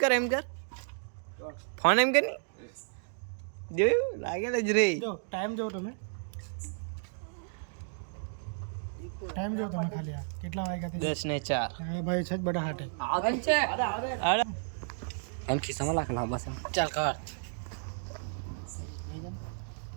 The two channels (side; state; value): left; silent; digital silence